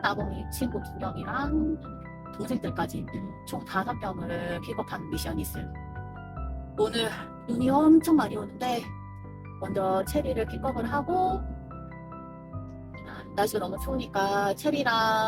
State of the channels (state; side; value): identical; both; correlation 1.00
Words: 친구 2명이랑 동생들까지 총 5명을 픽업하는 미션이 있어요. 오늘 눈이 엄청 많이 오는데 먼저 체리를 픽업을 하고, 날씨가 너무 추우니까